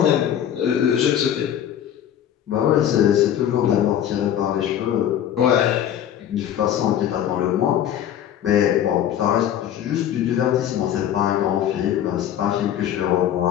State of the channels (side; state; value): right; quieter; 10.4 dB